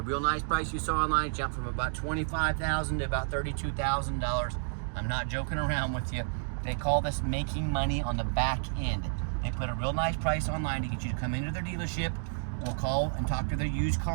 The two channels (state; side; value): silent; left; digital silence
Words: real nice price you saw online jumped from about $25,000 to about $32,000. I'm not joking around with you. They call this making money on the back end. They put a real nice price online to get you to come into their dealership. We'll call and talk to their used